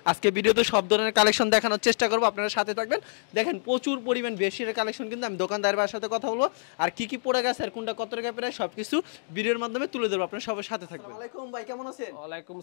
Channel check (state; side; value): silent; right; digital silence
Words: আজকে ভিডিওতে সব ধরনের কালেকশন দেখানোর চেষ্টা করবো, আপনারা সাথে থাকবেন। দেখেন প্রচুর পরিমাণ বেডশিটের কালেকশন, কিন্তু আমি দোকানদারের সাথে কথা বলবো আর কি কি পড়ে গেছে আর কোনটা কত টাকা প্রায় সবকিছু ভিডিওর মাধ্যমে তুলে ধরবো। আপনারা সবার সাথে থাকবেন। আসসালামু আলাইকুম ভাই, কেমন আছেন? ওয়ালাইকুম